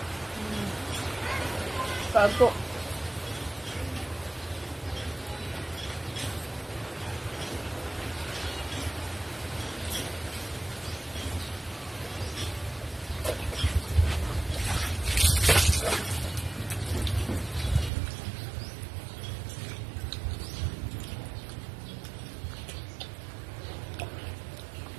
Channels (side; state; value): left; drops out; at 17.9 s